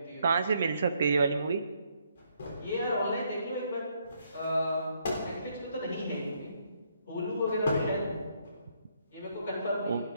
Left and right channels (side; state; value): both; inverted; correlation -0.72